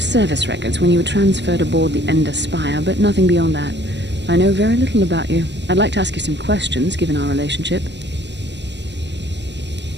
records when you were transferred aboard the Ender Spire, but nothing beyond that. I know very little about you. I'd like to ask you some questions, given our relationship.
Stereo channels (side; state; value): left; late; 0.51 ms